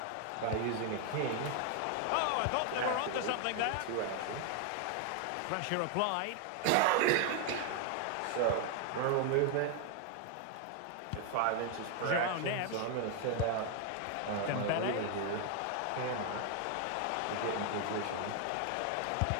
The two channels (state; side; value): different; both; correlation 0.01